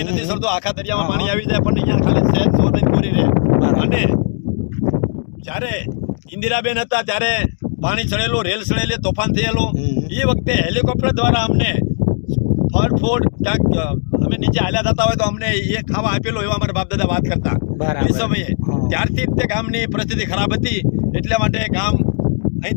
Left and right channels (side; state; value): right; silent; 57 dB below the other